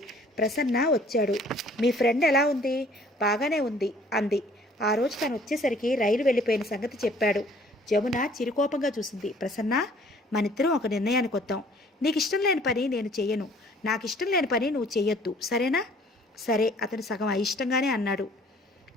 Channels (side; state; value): both; normal; correlation 0.56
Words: ప్రసన్న వచ్చాడు. మీ ఫ్రెండ్ ఎలా ఉంది? బాగానే ఉంది అంది. ఆ రోజు తను వచ్చేసరికి రైలు వెళ్ళిపోయిన సంగతి చెప్పాడు. జమున చిరుకోపంగా చూసింది. ప్రసన్న, మనిద్దరం ఒక నిర్ణయానికి వద్దాం. నీకు ఇష్టం లేని పని నేను చెయ్యను, నాకు ఇష్టం లేని పని నువ్వు చెయ్యొద్దు, సరేనా? సరే, అతను సగం అయిష్టంగానే అన్నాడు.